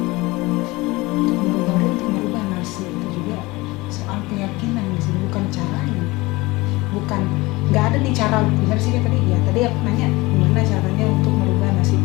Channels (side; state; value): right; quieter; 21.8 dB